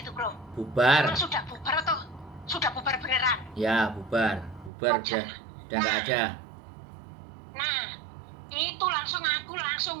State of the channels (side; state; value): left; drops out; at 4.7 s